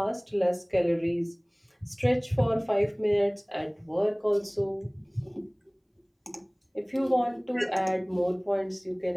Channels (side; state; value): both; identical; correlation 1.00